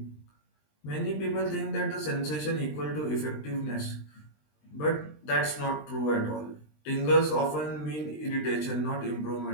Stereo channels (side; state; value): right; late; 20 ms